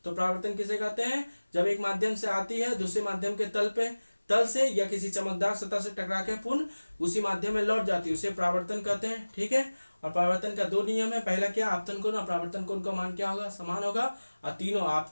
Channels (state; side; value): inverted; both; correlation -1.00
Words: तो परावर्तन किसे कहते हैं जब एक माध्यम से आती है दूसरे माध्यम के तल से या किसी चमकदार सतह से टकरा के पुनः उसी माध्यम में लौट जाती है, उसे परावर्तन कहते हैं, ठीक है। और परावर्तन का 2 नियम है, पहला क्या आपतन कोण और परावर्तन कोण का मान क्या होगा समान होगा, और तीनों